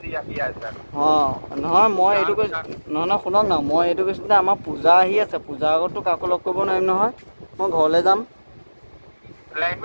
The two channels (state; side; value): inverted; both; correlation -1.00